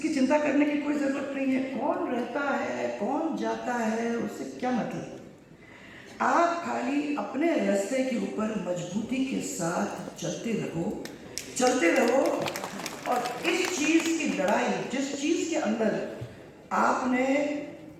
चिंता करने की कोई ज़रूरत नहीं है, कौन रहता है कौन जाता है उससे क्या मतलब, आप खाली अपने रास्ते के ऊपर मजबूती के साथ चलते रहो और इस चीज़ की लड़ाई, जिस चीज के अंदर आपने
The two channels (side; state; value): both; identical; correlation 1.00